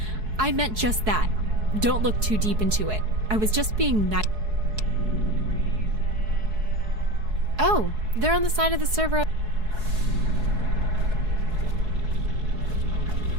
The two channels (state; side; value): late; left; 4.7 ms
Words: I meant just that. Don't look too deep into it. I was just being nice. Oh, they're on the side of the server.